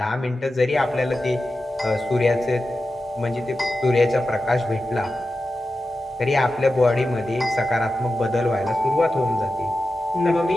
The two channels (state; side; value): normal; both; correlation 0.92